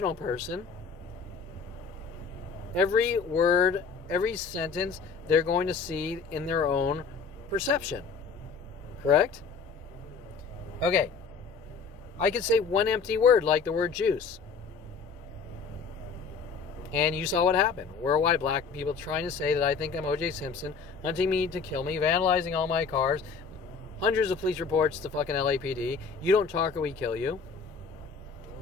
person, every word, every sentence, they're going to see in their own perception. Correct? Okay, I could say one empty word, like the word juice. And you saw what happened. Worldwide black people trying to say that I think I'm O.J. Simpson, hunting me to kill me, vandalizing all my cars, hundreds of police reports to fucking LAPD. You don't talk or we kill you.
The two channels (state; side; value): quieter; right; 5.3 dB